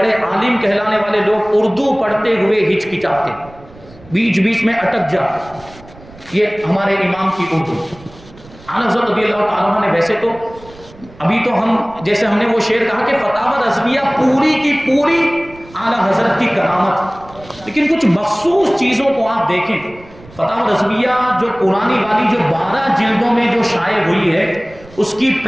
عالم کہلانے والے لوگ اردو پڑھتے ہوئے ہچکچاتے، بیچ بیچ میں اٹک جاتے، یہ ہمارے امام کی اردو۔ اعلیٰ حضرت رضی اللہ تعالیٰ نے ویسے تو ابھی تو ہم جیسے ہم نے وہ شعر کہا کہ فتاوی رضویہ پوری کی پوری اعلیٰ حضرت کی کرامت، لیکن کچھ مخصوص چیزوں کو آپ دیکھیں۔ فتاوی رضویہ جو پرانی والی جو 12 جلدوں میں جو شائع ہوئی ہے، اس کی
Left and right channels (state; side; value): noise; right; rumble, 22 dB below the sound